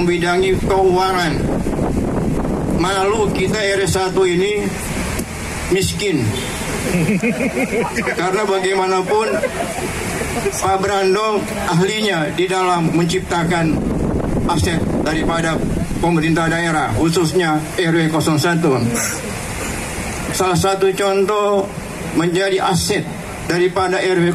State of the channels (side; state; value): both; identical; correlation 1.00